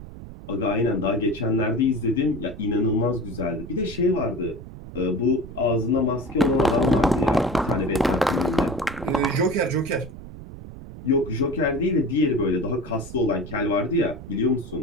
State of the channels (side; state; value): right; noise; rumble, 13 dB below the sound